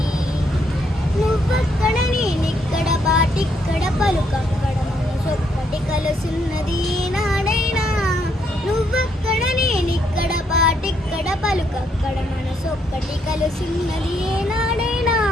నువ్వక్కడ నేనిక్కడ పాటిక్కడ పలుకక్కడ మనసొక్కటి కలుసున్నది నాడైనా. నువ్వక్కడ నేనిక్కడ పాటిక్కడ పలుకక్కడ మనసొక్కటి కలుసున్నది నాడైనా.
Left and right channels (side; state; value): both; normal; correlation 0.74